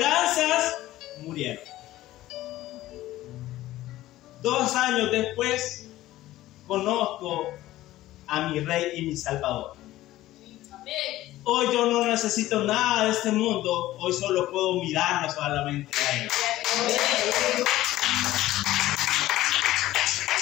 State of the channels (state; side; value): quieter; right; 15.6 dB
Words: murieron. 2 años después, conozco a mi Rey y mi Salvador. Amén. Hoy yo no necesito nada de este mundo, hoy solo puedo mirarlo solamente a Él.